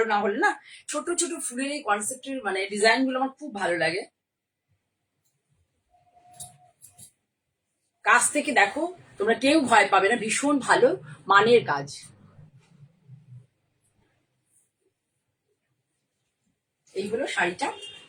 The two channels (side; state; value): both; identical; correlation 1.00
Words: না হলে না, ছোট ছোট ফুলের এই কনসেপ্টের মানে ডিজাইন গুলো আমার খুব ভালো লাগে। কাছ থেকে দেখো, তোমরা কেউ ভয় পাবে না, ভীষণ ভালো মানের কাজ। এই হলো শাড়িটা